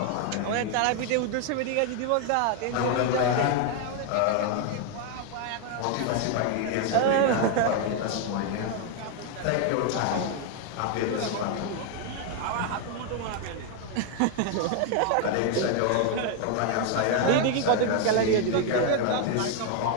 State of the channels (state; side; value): different; both; correlation 0.00